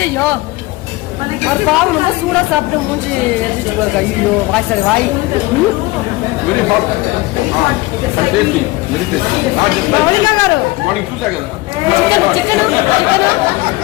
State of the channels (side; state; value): right; quieter; 20.7 dB